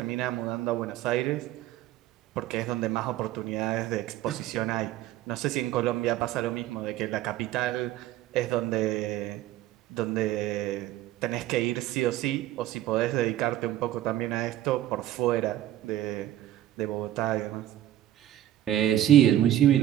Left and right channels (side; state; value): left; quieter; 13.1 dB